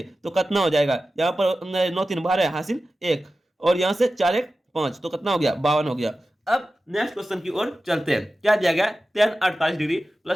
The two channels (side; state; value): both; normal; correlation 0.94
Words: तो कितना हो जाएगा, यहाँ पर 9 3 12 हासिल 1 और यहाँ से 4 1 5 तो कितना हो गया 52 हो गया। अब नेक्स्ट क्वेश्चन की ओर चलते हैं। क्या दिया गया tan 48 degree